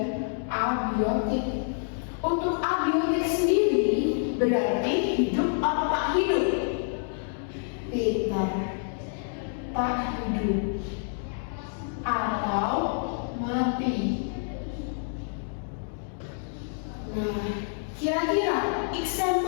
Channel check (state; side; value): silent; right; digital silence